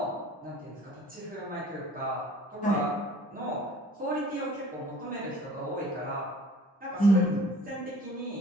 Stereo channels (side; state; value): both; normal; correlation 0.49